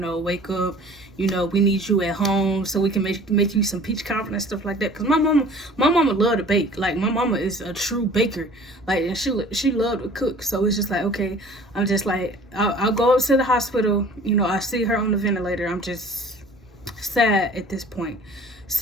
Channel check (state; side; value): normal; both; correlation 0.48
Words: wake up. We need you at home so we can make you some peach cobbler and stuff like that. Because my mama loved to bake. Like, my mama is a true baker. Like, and she loved to cook. So it's just like, okay, I'm just like, I'll go up to the hospital. I see her on the ventilator. I'm just sad at this point.